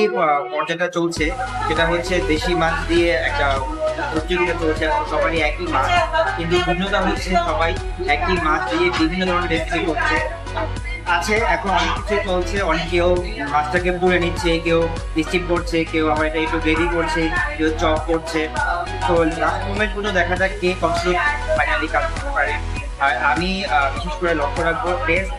পর্যায়টা চলছে সেটা হচ্ছে দেশি মাছ দিয়ে একটা প্রতিযোগিতা চলছে। সবারই একই মাছ, কিন্তু ভিন্নতা হচ্ছে সবাই একই মাছ দিয়ে বিভিন্ন ধরনের রেসিপি করছে। আছে এখন অনেক কিছু চলছে, অনেকেও মাছটাকে পুড়ে নিচ্ছে, কেউ স্টিম করছে, কেউ আবার এটা একটু গ্রেভি করছে, কেউ চপ করছে। তো লাস্ট মোমেন্ট পর্যন্ত দেখা যাক কে কনস্ট্রাক্ট ফাইনালি কাজ করতে পারে। আর আমি বিশেষ করে লক্ষ্য রাখবো টেস্ট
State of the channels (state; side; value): identical; both; correlation 1.00